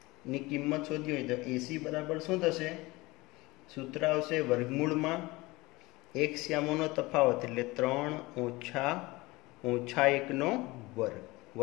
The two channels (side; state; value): right; quieter; 21.8 dB